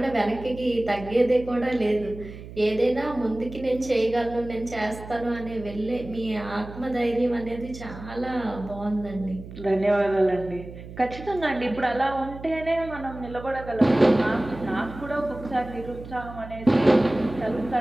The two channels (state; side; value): noise; right; hum, 14 dB below the sound